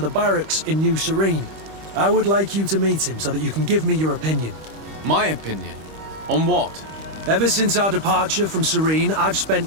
barracks in New Serene. I would like you to meet him so that you can give me your opinion. My opinion? On what? Ever since our departure from Serene, I've spent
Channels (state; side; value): late; left; 25 ms